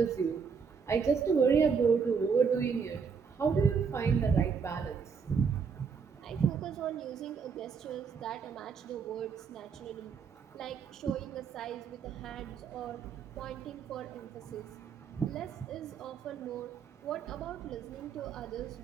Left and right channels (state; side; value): quieter; left; 6.0 dB